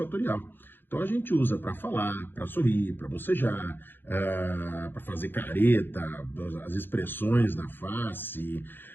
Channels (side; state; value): right; late; 0.098 ms